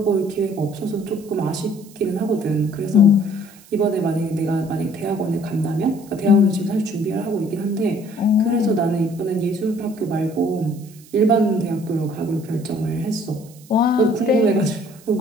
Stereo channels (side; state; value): right; noise; hiss, 24 dB below the sound